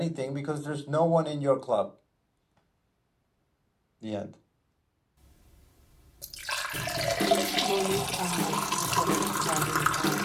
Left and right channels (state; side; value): identical; both; correlation 1.00